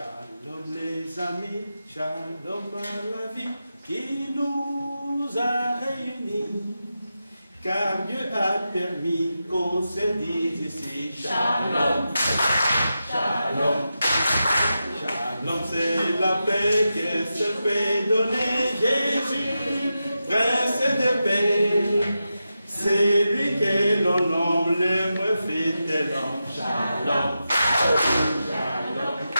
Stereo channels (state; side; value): inverted; both; correlation -0.90